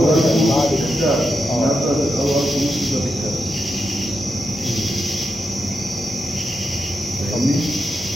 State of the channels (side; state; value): both; normal; correlation 0.86